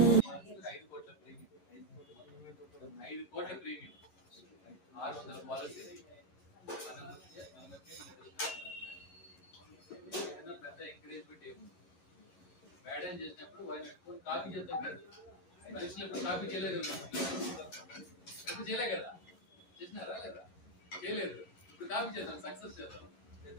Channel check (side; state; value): right; late; 11 ms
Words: కోట్ల ప్రీమియం 600 పాలసీ పెద్ద ఎంకరేజ్మెంట్ ఏముంది. మేడం చేసినప్పుడు వాడిని పెట్టుకొని కాపీ చేస్తాం కదా, పరీక్షలు ఎప్పుడు కాపీ చేయలేదు కదా, ఎప్పుడు చేయలే కదా, చేసినారా లేదా, చేయలేదు. ఇప్పుడు కాపీ చేద్దాం, సక్సెస్ చేద్దాం.